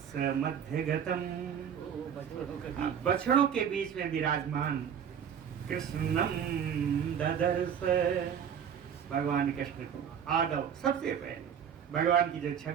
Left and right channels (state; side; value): quieter; left; 8.1 dB